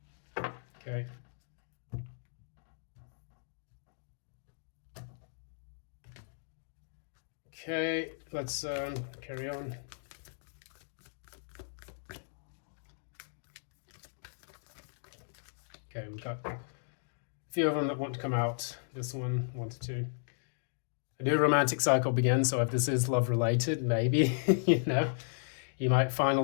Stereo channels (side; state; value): right; silent; digital silence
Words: Okay. Okay, let's carry on. Okay, we've got a few of them that want to come out. This one wanted to. A new romantic cycle begins, so if this is love related, maybe, you might